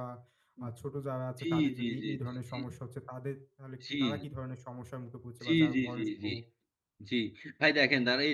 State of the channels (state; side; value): identical; both; correlation 1.00